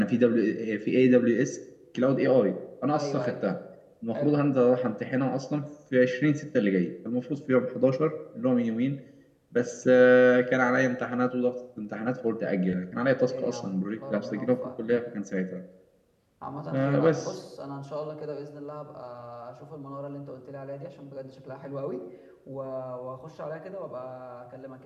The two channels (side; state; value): both; identical; correlation 1.00